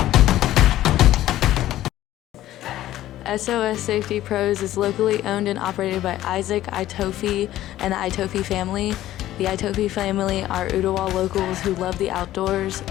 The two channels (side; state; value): right; quieter; 14.0 dB